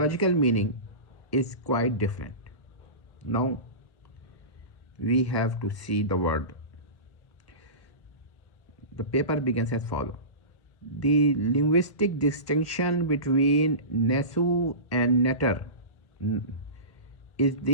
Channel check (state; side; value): late; right; 1.1 ms